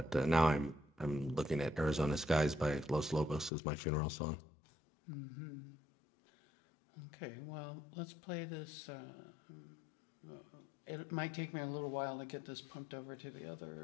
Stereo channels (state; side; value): drops out; right; at 3.5 s